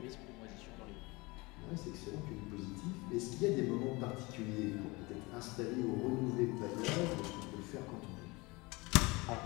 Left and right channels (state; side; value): quieter; right; 24.4 dB